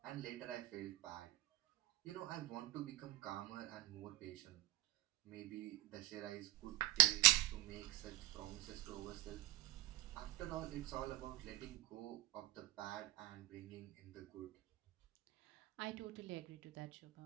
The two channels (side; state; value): left; quieter; 16.6 dB